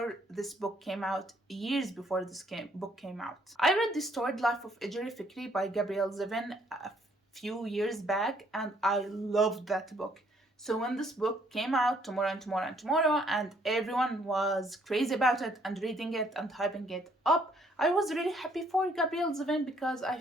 this book came out, years before this book came out. I read The Storied Life of Ejeri Fikri by Gabrielle Zevin a few years back, and I loved that book. So when this book came out, Tomorrow and Tomorrow and Tomorrow, and everyone was crazy about it and reading it and hyping it up, I was really happy for Gabrielle Zevin because I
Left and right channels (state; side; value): normal; both; correlation 0.66